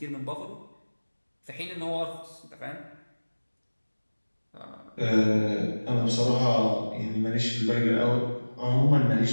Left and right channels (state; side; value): inverted; both; correlation -1.00